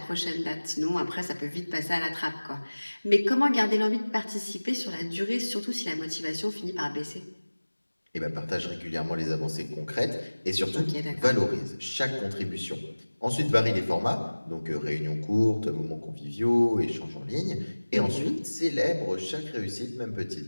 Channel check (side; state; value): both; inverted; correlation -1.00